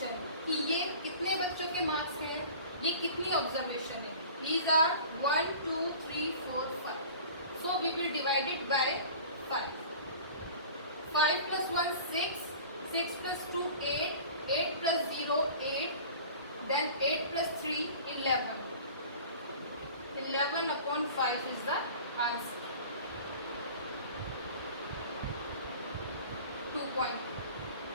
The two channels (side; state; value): both; inverted; correlation -0.41